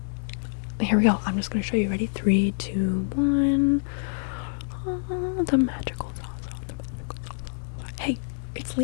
Here we go. I'm just gonna show you. Ready? 3, 2, 1. The magical sauce. Hey, it's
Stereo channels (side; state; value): right; silent; digital silence